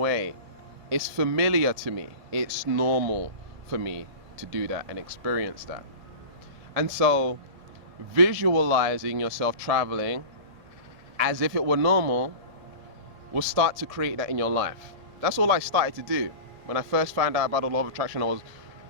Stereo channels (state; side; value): late; left; 1.8 ms